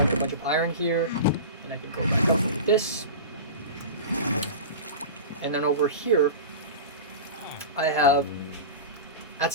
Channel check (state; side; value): inverted; both; correlation -0.30